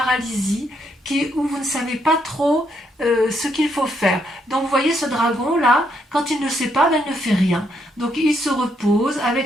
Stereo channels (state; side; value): normal; both; correlation 0.75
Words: où vous ne savez pas trop ce qu'il faut faire. Donc vous voyez ce dragon là, quand il ne sait pas, ben, il ne fait rien. Donc il se repose